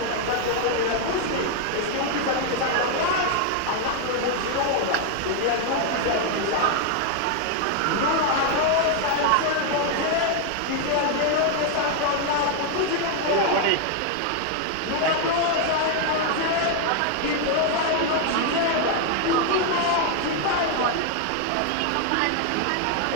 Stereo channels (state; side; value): different; both; correlation 0.00